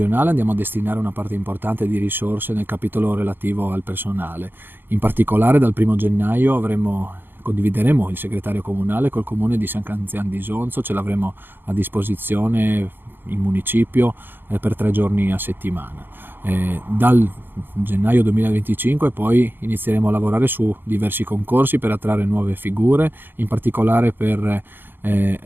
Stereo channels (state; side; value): late; left; 0.094 ms